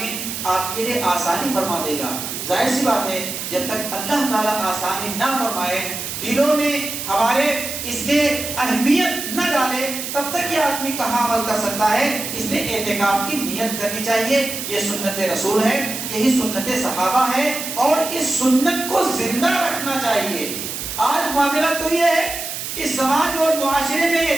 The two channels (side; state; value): right; noise; hiss, 6 dB below the sound